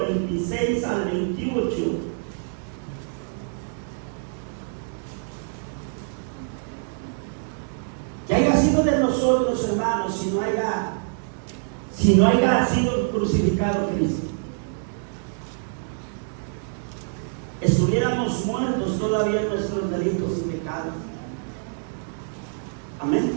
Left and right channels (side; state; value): left; silent; digital silence